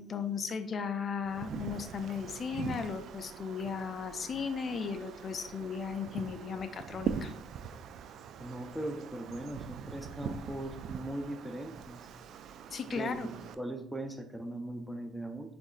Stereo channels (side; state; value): both; normal; correlation 0.67